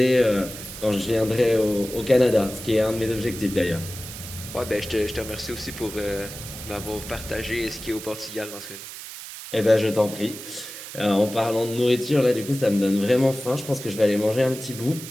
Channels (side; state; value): right; noise; hiss, 12 dB below the sound